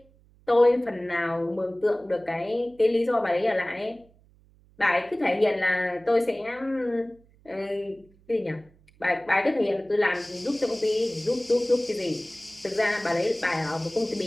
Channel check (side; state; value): right; noise; hum, 30 dB below the sound